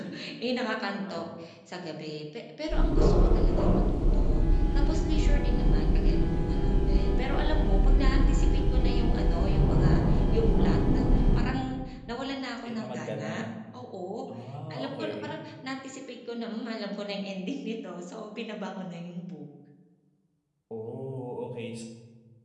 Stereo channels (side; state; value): both; identical; correlation 1.00